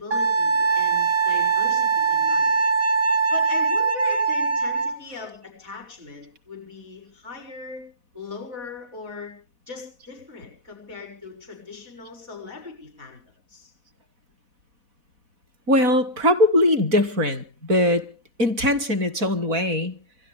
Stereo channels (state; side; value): late; left; 4.1 ms